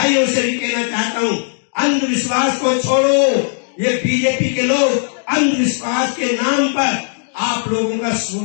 से भी कहना चाहता हूँ, अंधविश्वास को छोड़ो। ये बीजेपी के लोग अंधविश्वास के नाम पर आप लोगों का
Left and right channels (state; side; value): silent; right; 63 dB below the other